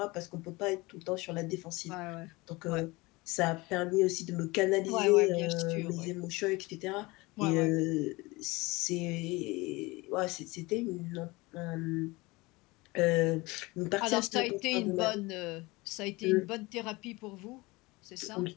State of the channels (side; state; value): right; quieter; 23.0 dB